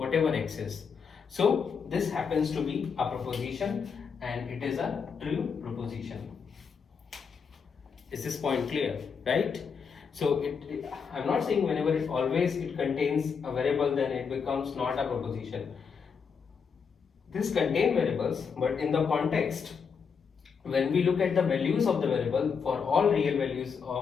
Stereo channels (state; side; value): quieter; right; 6.1 dB